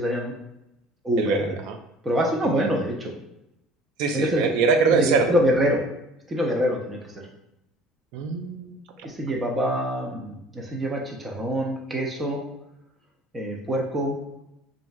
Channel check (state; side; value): normal; both; correlation 0.49